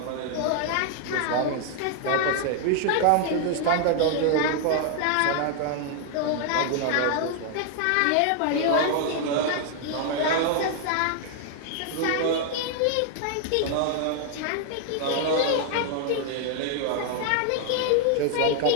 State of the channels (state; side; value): different; both; correlation 0.00